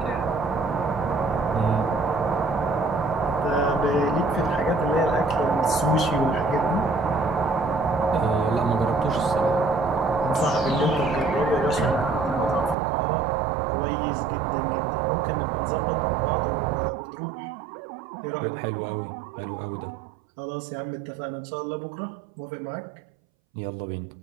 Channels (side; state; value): left; drops out; at 12.8 s